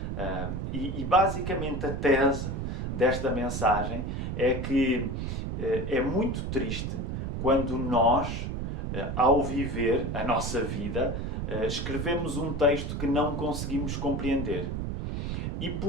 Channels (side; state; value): right; noise; rumble, 3 dB below the sound